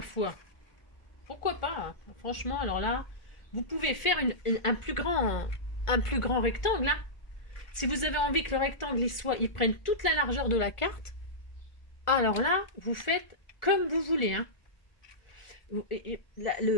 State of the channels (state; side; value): late; right; 1.4 ms